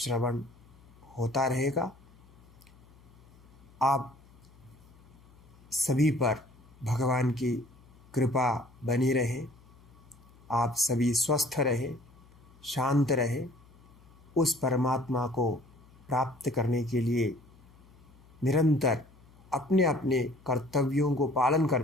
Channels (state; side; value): noise; left; hum, 26 dB below the sound